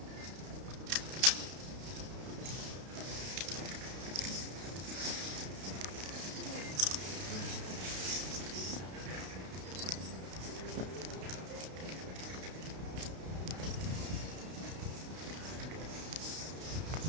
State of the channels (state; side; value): late; left; 32 ms